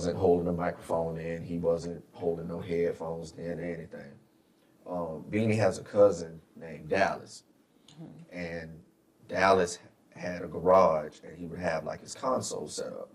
holding a microphone in. He wasn't holding no headphones in or anything. Beanie has a cousin named Dallas. And Dallas had a garage and he would have like his console set up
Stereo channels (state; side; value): identical; both; correlation 1.00